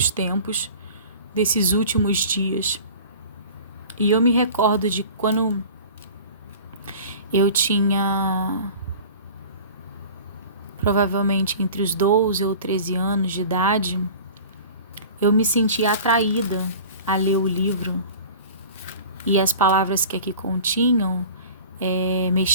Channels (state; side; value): inverted; both; correlation -0.41